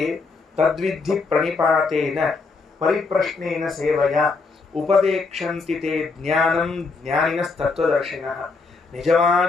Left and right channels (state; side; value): quieter; right; 4.2 dB